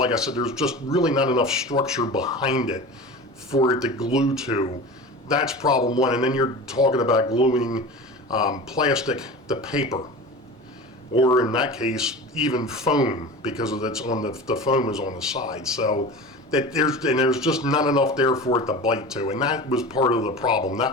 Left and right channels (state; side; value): normal; both; correlation 0.33